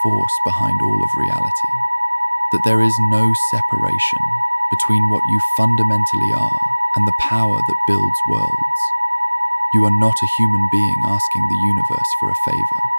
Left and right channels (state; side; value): inverted; both; correlation -1.00